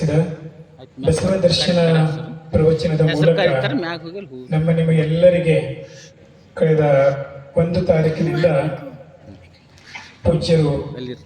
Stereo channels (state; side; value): identical; both; correlation 1.00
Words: ಬಸವ ದರ್ಶನ ಪ್ರವಚನದ ಮೂಲಕ ನಿಮ್ಮ ಎಲ್ಲರಿಗೆ ಕಳೆದ 1 ತಾರೀಕಿನಿಂದ ಪೂಜ್ಯರು